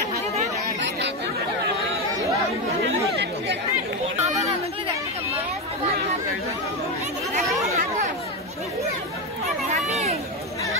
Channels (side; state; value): both; normal; correlation 0.12